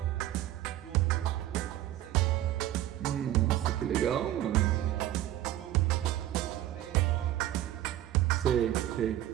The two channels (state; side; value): quieter; left; 13.5 dB